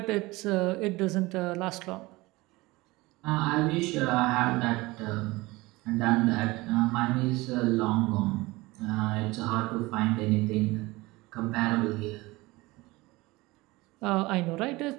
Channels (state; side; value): quieter; left; 21.4 dB